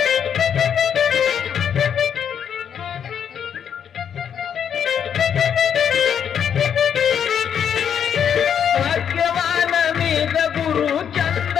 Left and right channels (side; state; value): right; quieter; 8.3 dB